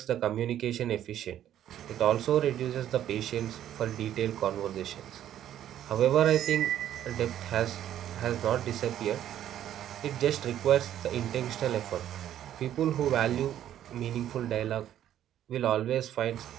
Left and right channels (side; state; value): left; quieter; 11.3 dB